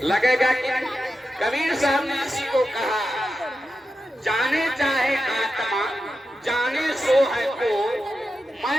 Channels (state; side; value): normal; both; correlation 0.90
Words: लगेगा कि। कबीर साहब ने इसी को कहा, जाने चाहे आत्मा जाने सो है को,